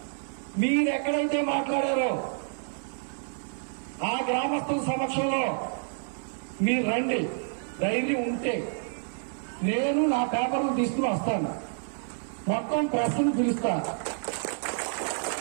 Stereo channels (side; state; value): left; silent; 59 dB below the other